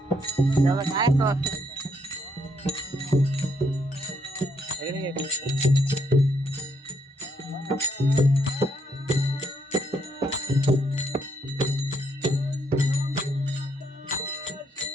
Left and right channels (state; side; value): normal; both; correlation 0.74